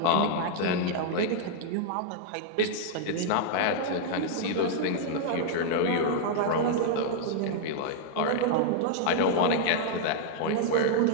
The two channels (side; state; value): both; different; correlation -0.01